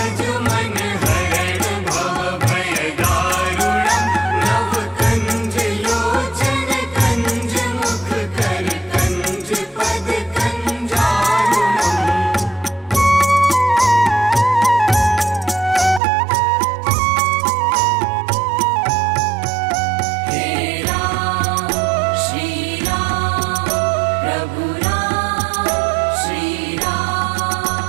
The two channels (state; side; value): drops out; left; at 16.0 s